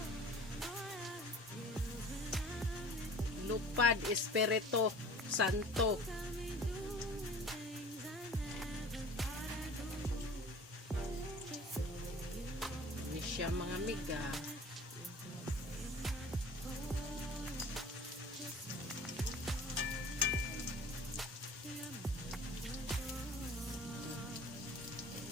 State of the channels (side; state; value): both; normal; correlation 0.44